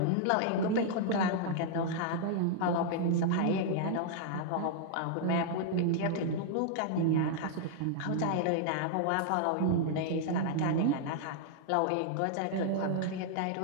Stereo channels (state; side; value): different; both; correlation -0.01